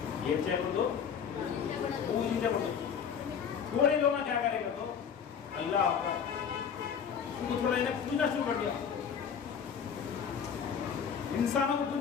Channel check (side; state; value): right; quieter; 7.3 dB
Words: ఏం చేయకూడదు, పూజించకూడదు. थोड़े लोग क्या करेगा तो अल्लाह उनको थोड़ा इन्हें पूजना शुरू कर दिया, इंसानों को